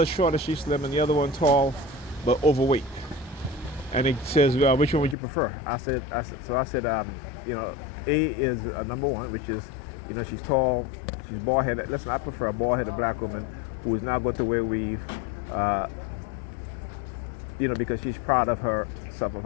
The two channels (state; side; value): drops out; right; at 5.2 s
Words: shorter, she's slim, and the other one tall, but overweight. And it says, which one would you prefer? I said, you know, A is number one, which is, you know, she's tall, she's bald-headed. Listen, I prefer a bald-headed black woman who is not going to wear weave, you know, because she's proud of herself, of